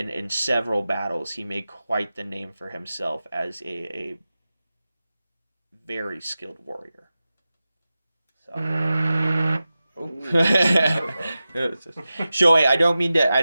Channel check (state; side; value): inverted; both; correlation -0.94